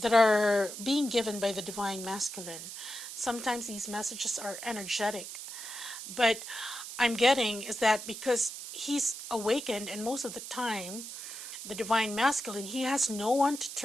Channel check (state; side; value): noise; right; hiss, 9 dB below the sound